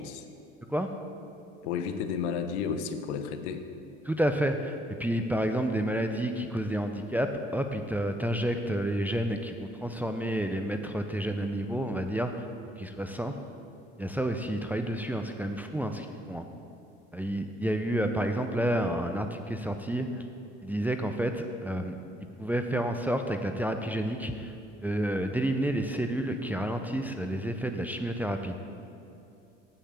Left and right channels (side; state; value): both; normal; correlation 0.73